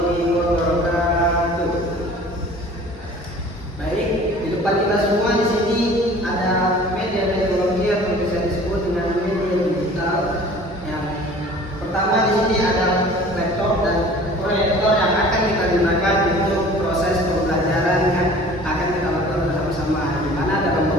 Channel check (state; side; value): normal; both; correlation 0.46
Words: wabarakatuh. Baik, di depan kita semua di sini ada media teknologi yang bisa disebut dengan media digital. Yang pertama di sini ada laptop dan proyektor yang akan kita gunakan untuk proses pembelajaran yang akan kita lakukan bersama-sama. Di mana dalam